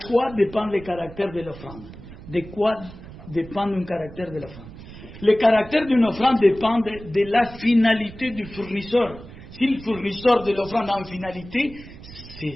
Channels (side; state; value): right; noise; rumble, 16 dB below the sound